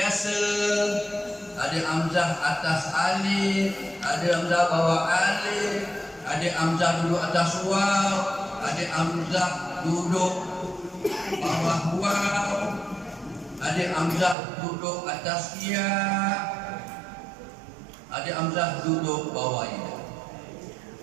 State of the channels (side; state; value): left; drops out; at 14.4 s